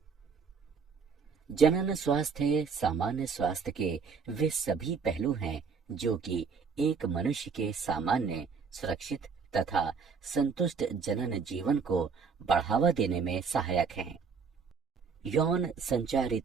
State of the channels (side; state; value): left; quieter; 5.6 dB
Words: जनन स्वास्थ्य सामान्य स्वास्थ्य के वे सभी पहलू हैं जो कि एक मनुष्य के सामान्य, सुरक्षित तथा संतुष्ट जनन जीवन को बढ़ावा देने में सहायक हैं। यौन